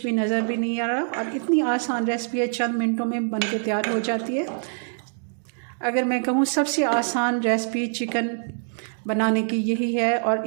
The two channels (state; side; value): silent; left; 62 dB below the other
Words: भी नज़र भी नहीं आ रहा और इतनी आसान रेसिपी है, चंद मिनटों में बन के तैयार हो जाती है। अगर मैं कहूँ सबसे आसान रेसिपी चिकन बनाने की यही है और